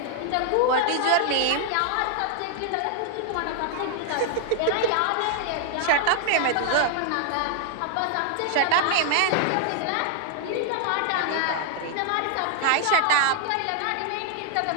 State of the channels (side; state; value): both; different; correlation 0.00